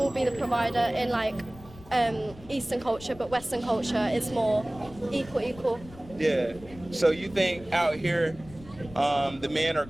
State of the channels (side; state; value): left; noise; rumble, 19 dB below the sound